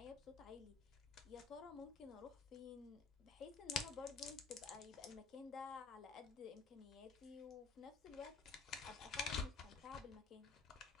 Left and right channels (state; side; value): quieter; right; 5.0 dB